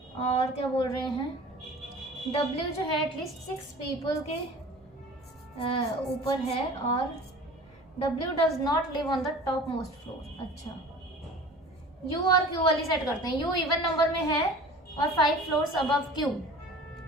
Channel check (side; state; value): both; normal; correlation 0.41